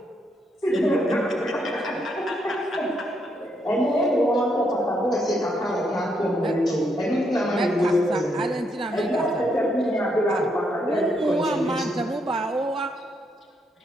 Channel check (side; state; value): both; normal; correlation 0.77